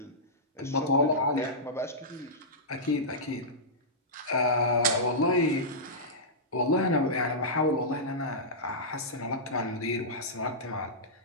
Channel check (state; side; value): normal; both; correlation -0.14